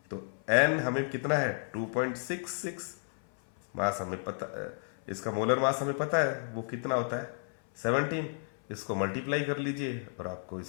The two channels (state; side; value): silent; right; 56 dB below the other